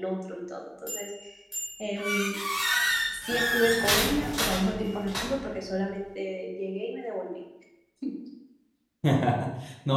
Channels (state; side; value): identical; both; correlation 1.00